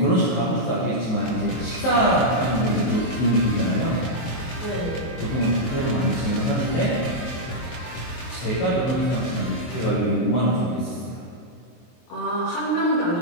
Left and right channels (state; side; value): late; right; 23 ms